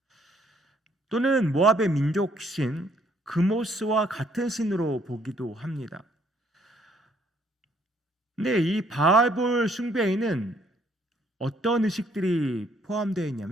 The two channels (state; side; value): normal; both; correlation 0.66